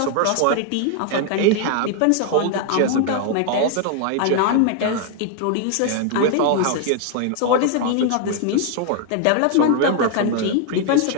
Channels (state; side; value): different; both; correlation 0.00